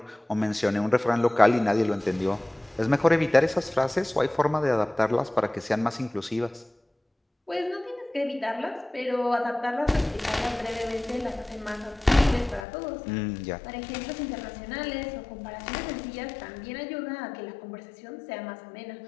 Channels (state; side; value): drops out; right; at 12.7 s